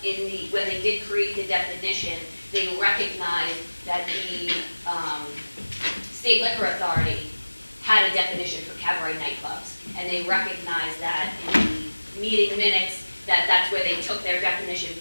when they did create the definition, they recognized that the State Liquor Authority had a definition for cabaret nightclubs, and they recognized that in the meeting minutes that's where they took their definition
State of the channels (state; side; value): inverted; both; correlation -1.00